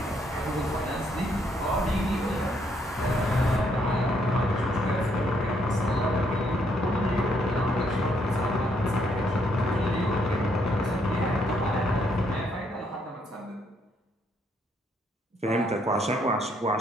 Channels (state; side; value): normal; both; correlation 0.72